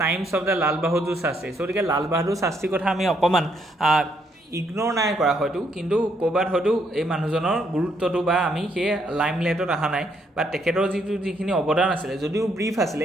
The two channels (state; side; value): normal; both; correlation 0.73